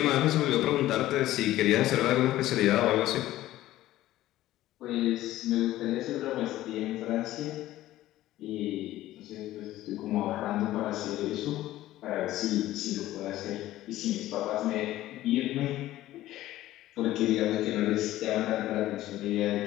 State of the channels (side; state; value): right; quieter; 15.0 dB